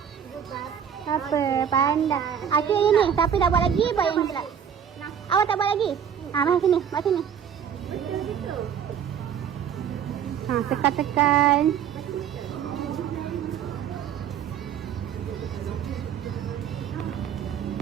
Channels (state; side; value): quieter; left; 8.3 dB